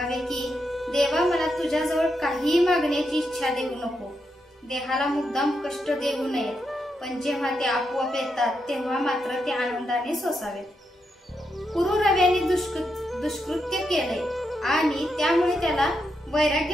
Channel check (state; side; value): normal; both; correlation 0.83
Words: की देवा मला तुझ्याजवळ काहीही मागण्याची इच्छा देऊ नको। देहाला मुद्दाम कष्ट देऊ नयेत, पण जेव्हा ते आपोआप येतात तेव्हा मात्र ते आनंदाने सोसावेत। पुरुरव्याने दुष्कृत्य केले आणि त्यामुळे त्याला